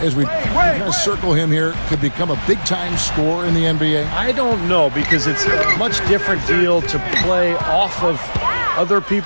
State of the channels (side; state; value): both; inverted; correlation -1.00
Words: as we kind of circle him here, could become a big-time scorer in the NBA? I don't know, because it's a much different deal to play off of other